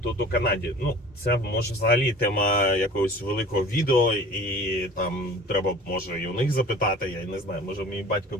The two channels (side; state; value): both; normal; correlation 0.44